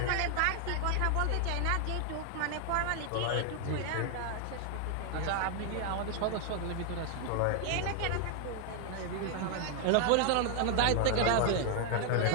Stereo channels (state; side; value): different; both; correlation 0.00